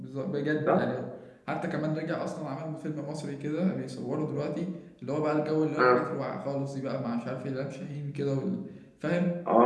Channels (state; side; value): identical; both; correlation 1.00